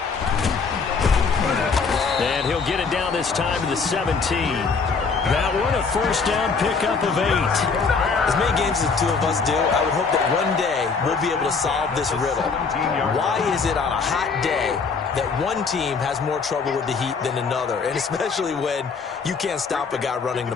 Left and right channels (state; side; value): quieter; right; 5.0 dB